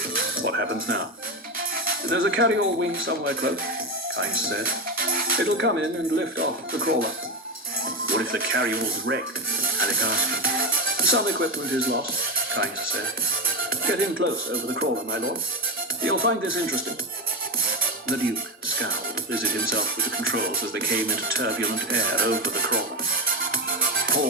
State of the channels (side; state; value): both; normal; correlation 0.15